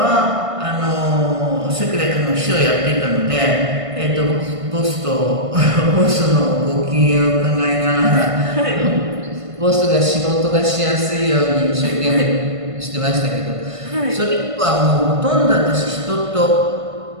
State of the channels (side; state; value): left; late; 1.5 ms